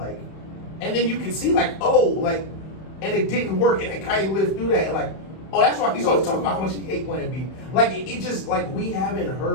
and then you can see like and it didn't work, and then Kanye lived through that, and like, oh, that's why he's always talking about how much he hate Plan B. Like it just like we haven't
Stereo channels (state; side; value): late; right; 31 ms